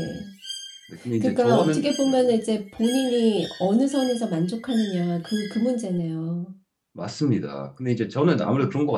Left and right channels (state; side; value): identical; both; correlation 1.00